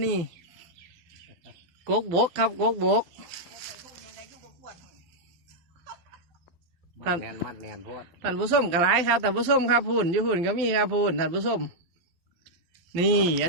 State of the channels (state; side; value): late; left; 12 ms